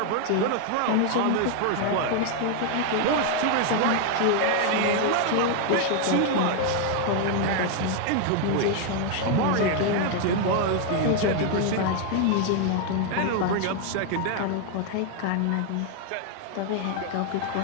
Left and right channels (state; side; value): different; both; correlation 0.00